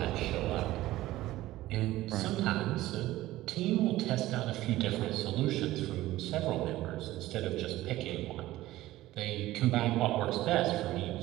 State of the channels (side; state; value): left; quieter; 16.2 dB